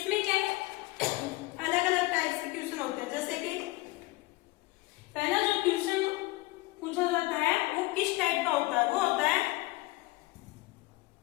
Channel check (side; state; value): right; quieter; 21.3 dB